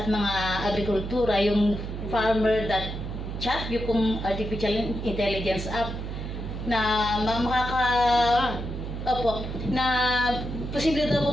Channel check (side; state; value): right; noise; hum, 6 dB below the sound